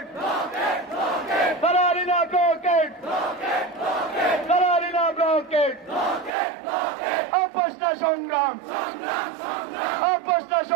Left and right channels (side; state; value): left; drops out; at 6.3 s